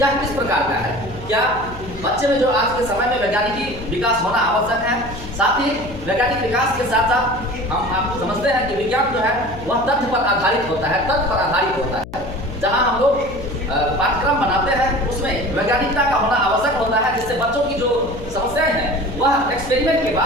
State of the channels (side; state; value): left; noise; hum, 14 dB below the sound